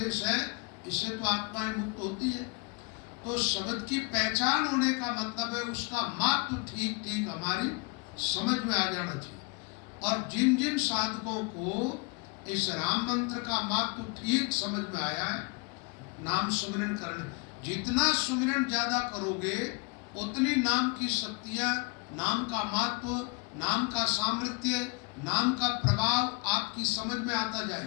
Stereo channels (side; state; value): right; quieter; 31.2 dB